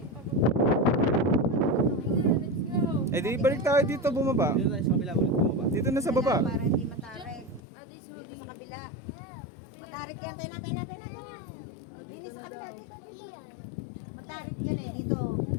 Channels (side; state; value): right; drops out; at 7.6 s